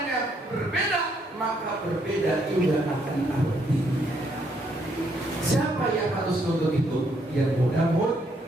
berbeda, maka berbeda juga akan artinya. Siapa yang harus nonton itu? Yang mudah-mudahan.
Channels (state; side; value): normal; both; correlation 0.72